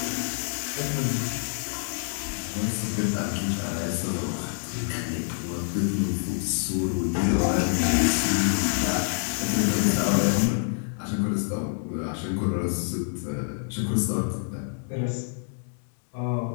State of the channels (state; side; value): silent; right; digital silence